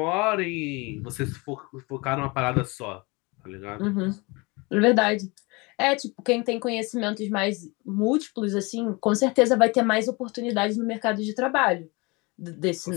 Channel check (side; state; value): right; quieter; 26.5 dB